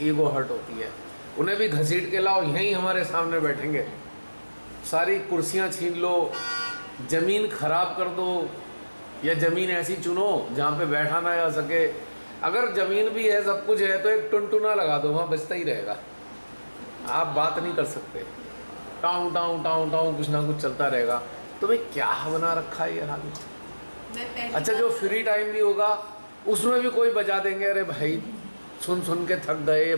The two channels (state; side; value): inverted; both; correlation -1.00